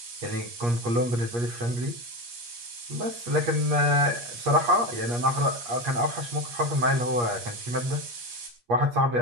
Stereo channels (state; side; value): late; left; 8.4 ms